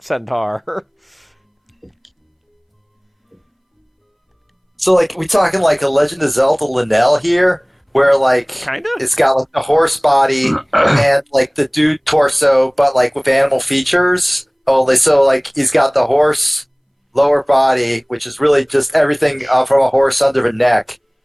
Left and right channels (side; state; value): both; identical; correlation 1.00